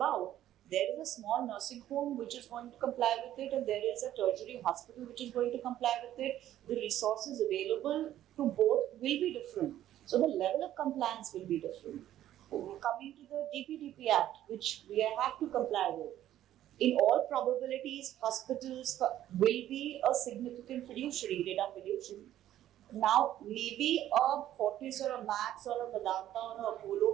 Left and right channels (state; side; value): quieter; left; 12.5 dB